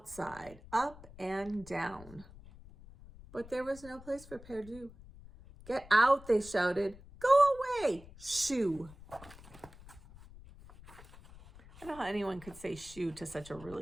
up and down. But there was no place for Perdu. Get out, they shouted. Go away, shoo. I don't know how anyone could say shoo to such a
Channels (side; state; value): left; noise; rumble, 19 dB below the sound